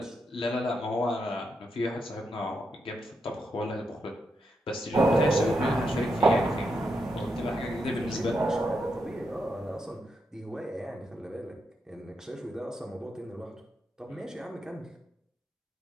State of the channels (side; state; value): both; normal; correlation 0.83